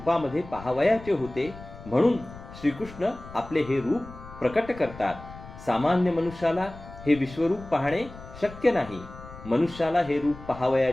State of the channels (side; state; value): left; noise; rumble, 16 dB below the sound